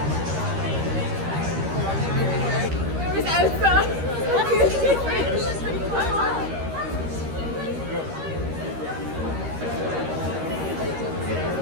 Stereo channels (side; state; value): left; late; 13 ms